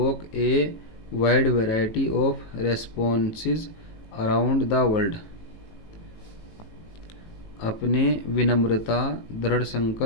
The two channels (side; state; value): right; late; 18 ms